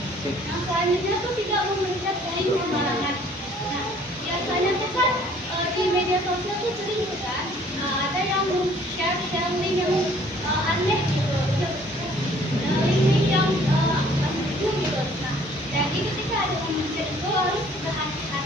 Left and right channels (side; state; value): both; normal; correlation 0.57